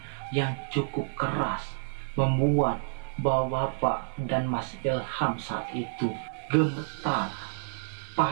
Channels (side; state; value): left; silent; 58 dB below the other